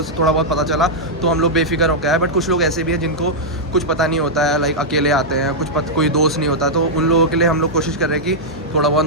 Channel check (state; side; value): normal; both; correlation -0.06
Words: से थोड़ा बहुत पता चला, तो हम लोग बेफिक्र हो गए हैं। बट कुछ लोग ऐसे भी हैं जिनको कुछ पता नहीं होता है, लाइक अकेले आते हैं, कोई दोस्त नहीं होता, तो उन लोगों के लिए हम लोग कोशिश कर रहे हैं कि थोड़ा बहुत